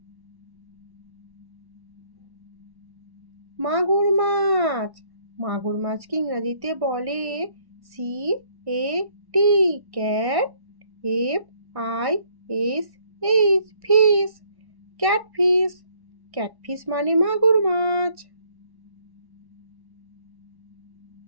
মাগুর মাছ, মাগুর মাছকে ইংরাজিতে বলে CAT, cat. FISH, fish. Catfish, catfish মানে মাগুর মাছ।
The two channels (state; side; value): late; left; 1.6 ms